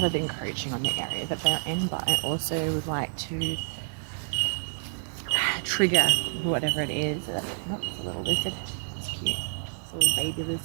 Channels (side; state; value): left; silent; digital silence